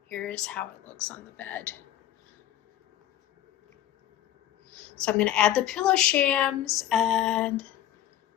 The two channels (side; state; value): right; quieter; 12.4 dB